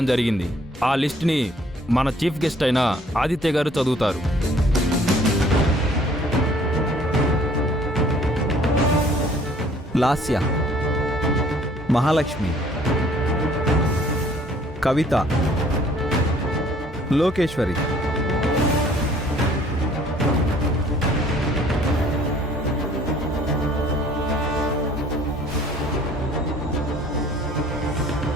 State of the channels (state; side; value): normal; both; correlation 0.57